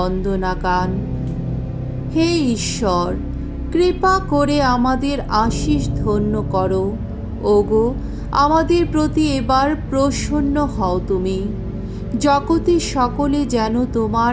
গান। হে ঈশ্বর, কৃপা করে আমাদের আশীষ ধন্য করো। ওগো, আমাদের প্রতি এবার প্রসন্ন হও তুমি। জগতের সকলে যেন তোমার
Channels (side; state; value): both; identical; correlation 1.00